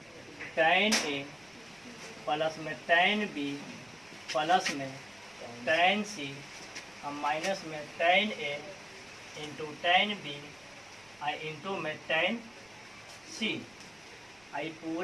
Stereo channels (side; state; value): right; noise; rumble, 30 dB below the sound